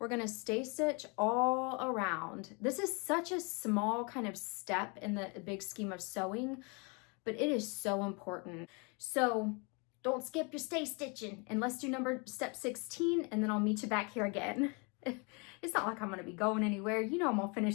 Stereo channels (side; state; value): right; quieter; 31.7 dB